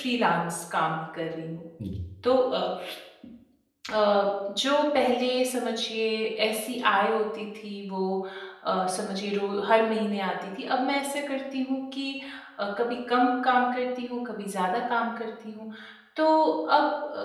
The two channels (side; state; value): both; identical; correlation 1.00